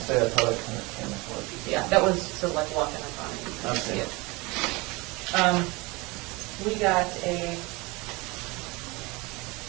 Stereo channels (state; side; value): quieter; left; 24.8 dB